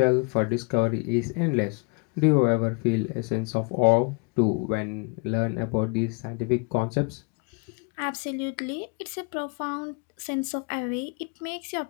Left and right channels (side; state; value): right; quieter; 32.3 dB